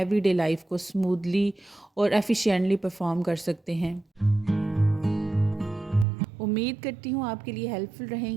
लाइफ को स्मूथली और एफिशिएंटली परफॉर्म कर सकते हैं। उम्मीद करती हूँ आपके लिए हेल्पफुल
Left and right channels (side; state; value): left; drops out; at 6.1 s